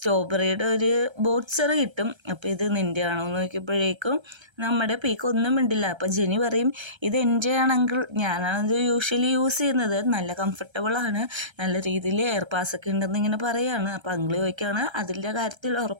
ഒരു ബോട്ട്സർ കിട്ടും. അപ്പോൾ ഇത് നിൻ്റെ ആണോ എന്ന് നോക്കിയപ്പോഴേക്കും നമ്മുടെ പീക്ക് ഒന്നും മിണ്ടില്ല. അപ്പോൾ ജെനി പറയും, ഇത് എൻ്റെ ആണെങ്കിൽ ഞാനാണിത് യൂഷ്വലി യൂസ് ചെയ്യുന്നത്, നല്ല കംഫർട്ടബിളാണ്, നല്ല രീതിയിൽ എയർ പാസ്സൊക്കെ ഉണ്ടെന്ന് ഇങ്ങനെ പറയുകയാണ്. അപ്പോൾ അങ്കിള് ചോദിക്കുകയാണ്, അതിൻ്റെ കാര്യത്തിൽ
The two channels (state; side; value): late; left; 1.3 ms